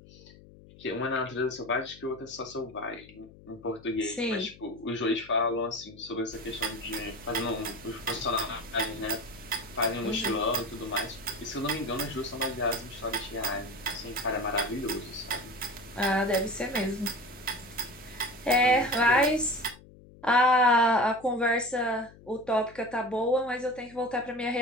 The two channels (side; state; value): left; noise; hum, 22 dB below the sound